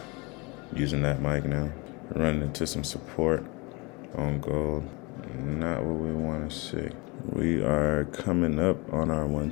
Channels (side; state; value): right; quieter; 27.1 dB